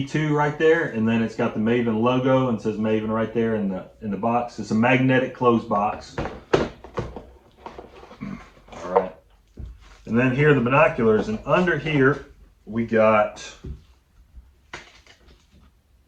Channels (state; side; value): identical; both; correlation 1.00